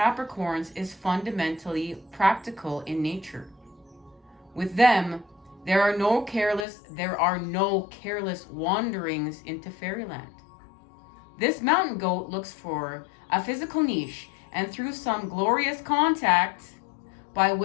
is fundamentally practical in nature. With them, there are no careless wanderings into fairyland. This mountain goat looks for a physical niche, and through some glorious contact by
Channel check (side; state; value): right; drops out; at 6.7 s